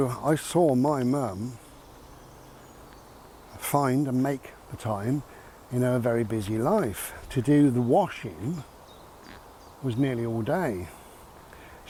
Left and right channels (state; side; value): identical; both; correlation 1.00